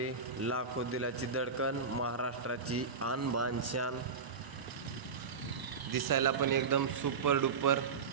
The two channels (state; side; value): quieter; left; 5.2 dB